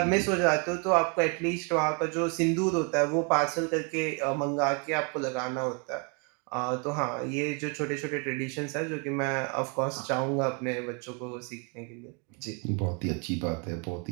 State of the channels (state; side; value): quieter; left; 34.7 dB